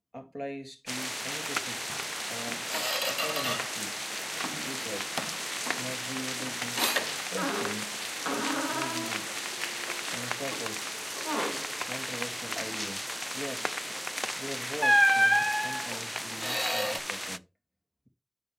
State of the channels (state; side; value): identical; both; correlation 1.00